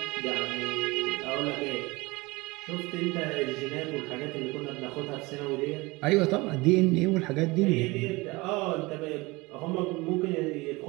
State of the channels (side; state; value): left; quieter; 23.2 dB